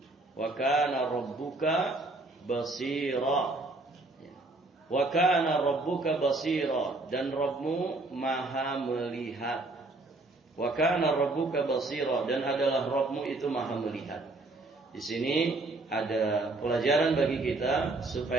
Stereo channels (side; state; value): left; quieter; 3.0 dB